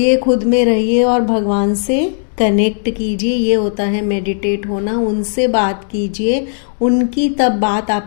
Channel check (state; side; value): silent; right; digital silence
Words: खुद में रहिए और भगवान से कनेक्ट कीजिए। ये होता है मेडिटेट होना। उनसे बात कीजिए, उनकी तब बात